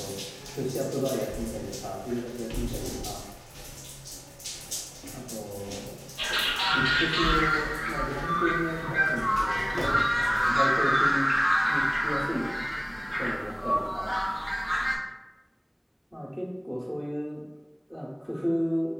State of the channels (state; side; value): identical; both; correlation 1.00